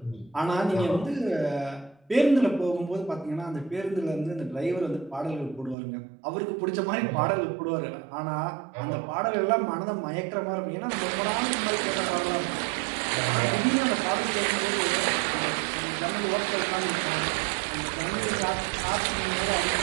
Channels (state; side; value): drops out; left; at 5.8 s